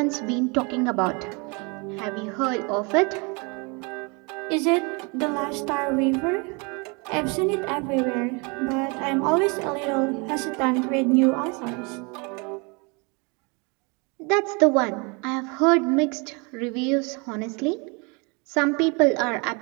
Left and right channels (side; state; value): left; quieter; 30.9 dB